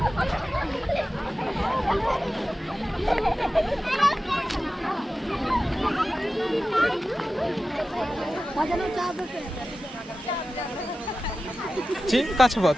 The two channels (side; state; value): both; normal; correlation 0.94